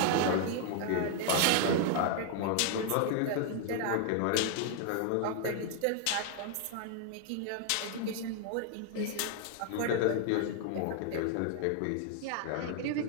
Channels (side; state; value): both; different; correlation 0.00